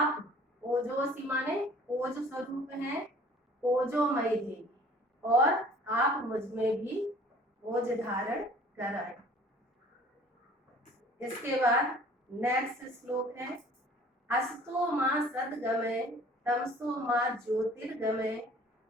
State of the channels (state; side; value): normal; both; correlation 0.51